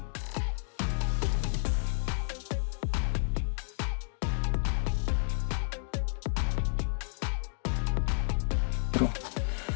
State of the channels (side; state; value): right; silent; digital silence